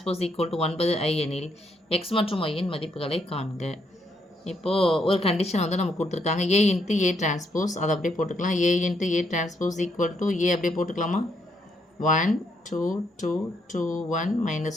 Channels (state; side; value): normal; both; correlation 0.75